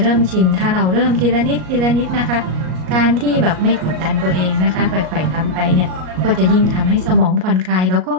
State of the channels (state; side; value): late; left; 38 ms